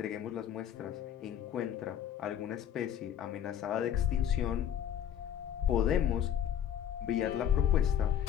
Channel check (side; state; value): right; quieter; 9.7 dB